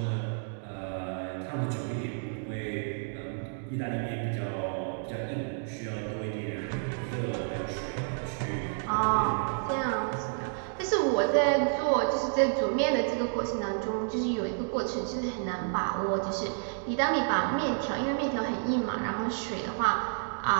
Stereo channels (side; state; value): left; silent; digital silence